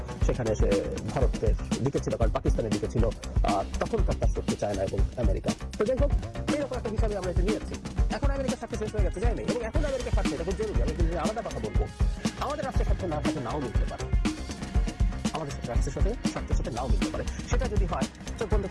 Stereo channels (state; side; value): identical; both; correlation 1.00